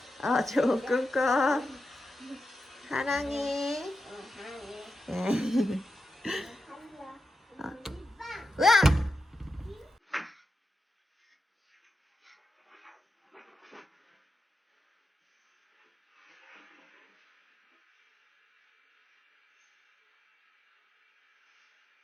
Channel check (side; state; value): both; normal; correlation 0.88